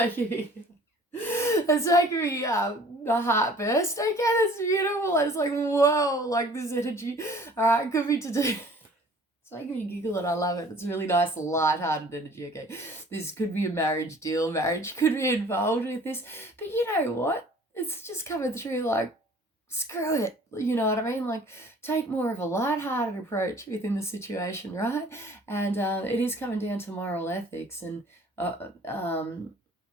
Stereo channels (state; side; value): normal; both; correlation 0.51